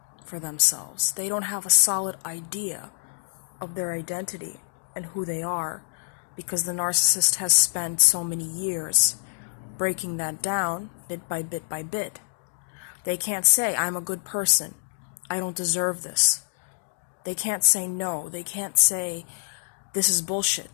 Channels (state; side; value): silent; right; digital silence